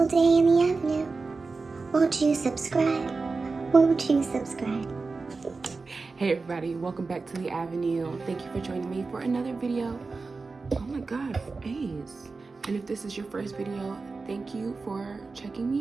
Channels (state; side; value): quieter; left; 4.1 dB